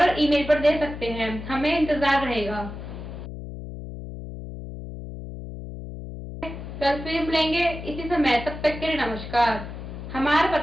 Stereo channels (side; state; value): left; noise; hum, 10 dB below the sound